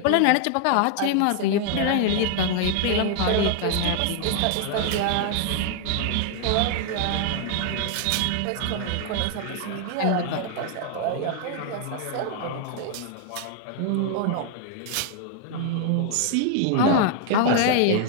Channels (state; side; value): different; both; correlation 0.00